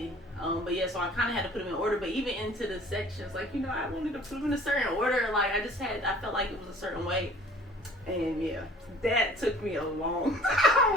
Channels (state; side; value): normal; both; correlation 0.50